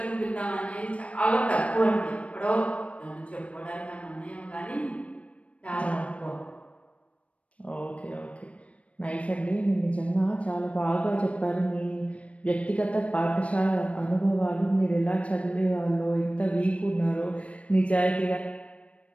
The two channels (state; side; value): late; right; 0.063 ms